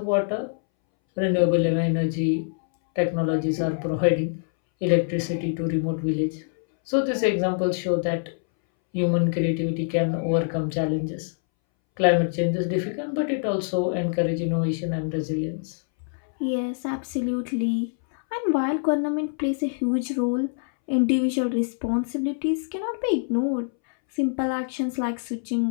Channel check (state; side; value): silent; right; 62 dB below the other